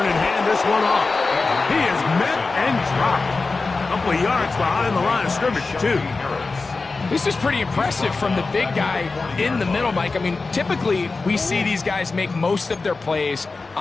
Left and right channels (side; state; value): right; quieter; 3.9 dB